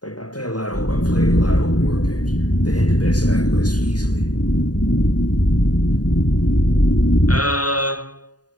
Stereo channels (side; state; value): right; late; 0.69 ms